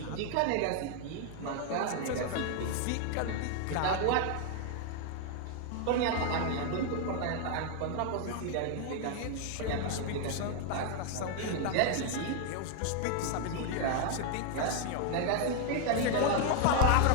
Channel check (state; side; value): different; both; correlation 0.00